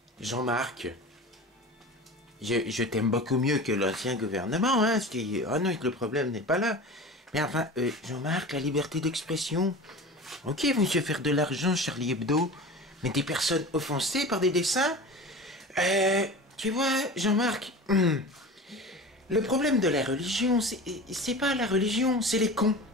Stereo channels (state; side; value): normal; both; correlation 0.34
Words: Jean-Marc, je t'aime beaucoup mieux que l'ancien gouvernement, hein. Oh non, le problème n'est pas là. Mais enfin, Jean-Marc, la liberté d'expression. Ok, vous monsieur faire de l'argent, Charlie Hebdo, mais des personnes offensées par des dessins. Tu vois, Jean-Marc, le problème de la religion, c'est pas la religion, c'est les cons.